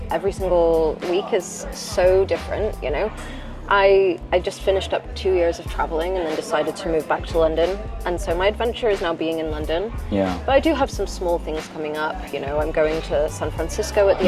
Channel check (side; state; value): both; identical; correlation 1.00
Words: Every single week is so different, you know. I just finished up 2 years of traveling and then decided to move back to London. And so my adventure is now being in London. Yeah. But I do have some small things coming up. You know, I'm going to San Francisco at the